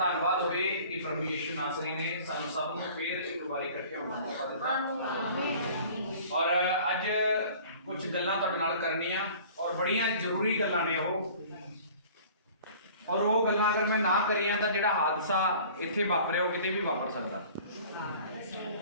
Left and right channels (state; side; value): inverted; both; correlation -0.47